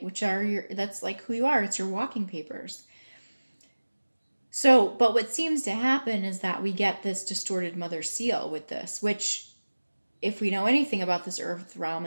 Which are that's like who you are. It's your walking papers. So, but what seems to happen is that we get this distorted mother seal with this, which if we know anything about this earth realm,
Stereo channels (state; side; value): inverted; both; correlation -1.00